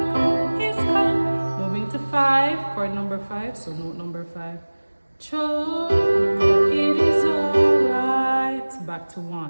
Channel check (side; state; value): both; inverted; correlation -1.00